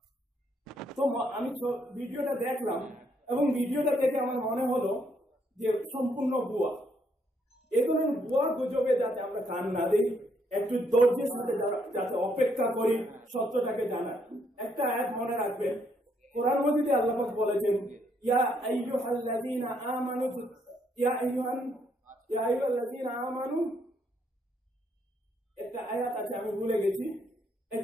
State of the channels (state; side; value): normal; both; correlation 0.72